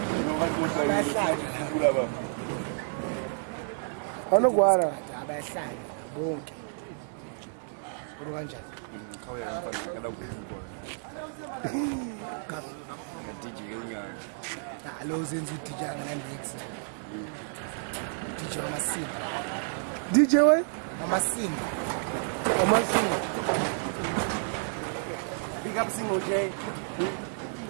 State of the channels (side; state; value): left; silent; 58 dB below the other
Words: Anogwara. Abahlali bonke. Uri kanjani? Alo zenza DJ ngalex. DJ Masimba. DJ we? Masimba. Masimba. Big up single J.